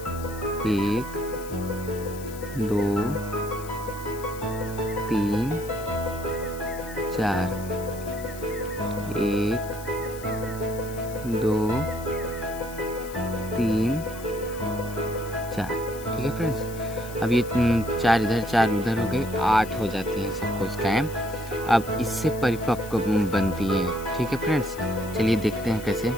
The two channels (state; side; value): noise; left; hiss, 16 dB below the sound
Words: 1 2 3 4, 1 2 3 4। ठीक है फ्रेंड्स, अब ये 4 इधर 4 उधर हो गए, 8 हो जाते हैं सब कोशिकाएं। अब इससे परिपक्व बनती है। ठीक है फ्रेंड्स, चलिए देखते हैं कैसे।